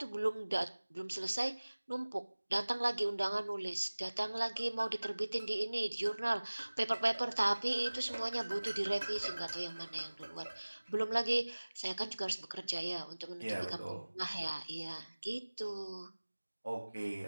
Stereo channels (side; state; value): both; inverted; correlation -1.00